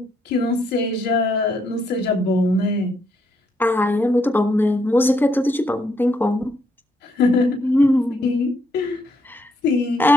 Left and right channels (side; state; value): both; normal; correlation 0.74